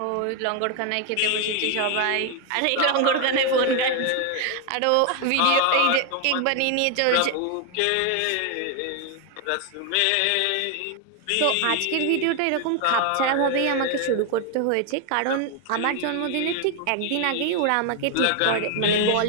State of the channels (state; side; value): different; both; correlation 0.01